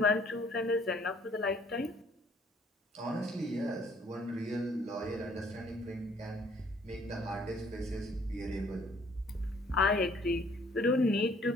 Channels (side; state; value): both; normal; correlation 0.60